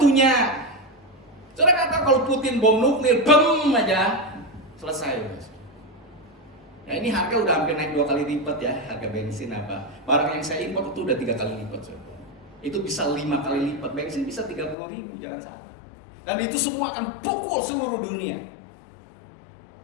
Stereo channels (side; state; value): right; drops out; at 14.8 s